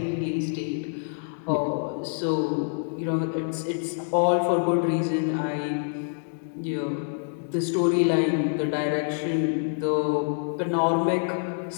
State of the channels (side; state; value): right; silent; digital silence